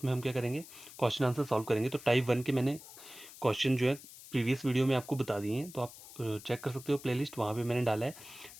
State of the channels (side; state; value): left; noise; hiss, 17 dB below the sound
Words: हम क्या करेंगे, क्वेश्चन आंसर सॉल्व करेंगे। तो टाइप 1 के मैंने क्वेश्चन जो है प्रीवियस वीडियो में आपको बता दिए हैं, तो आप चेक कर सकते हो प्लेलिस्ट, वहाँ पे मैंने डाला है।